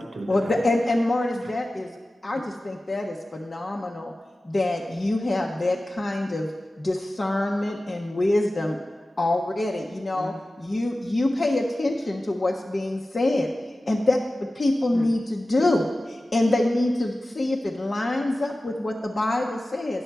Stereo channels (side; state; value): both; normal; correlation 0.96